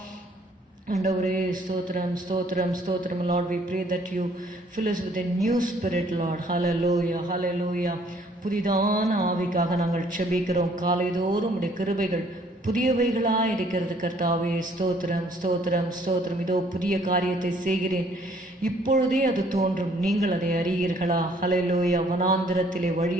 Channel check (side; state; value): both; normal; correlation 0.61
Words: ஆண்டவரே ஸ்தோத்திரம் ஸ்தோத்திரம் ஸ்தோத்திரம். Lord, we pray that you fill us with a new spirit, Lord. Hallelujah hallelujah. புதிதான ஆவிக்காக நாங்கள் செபிக்கிறோம். காலைதோறும் உடைய கிருபைகள் புதியவைகளாக இருக்கிறது கர்த்தாவே. ஸ்தோத்திரம் ஸ்தோத்திரம் ஸ்தோத்திரம். இதோ புதிய காரியத்தை செய்கிறேன், இப்பொழுதே அது தோன்றும், நீங்கள் அதை அறியீர்களா? ஹல்லேலூயா. வனாந்திரத்திலே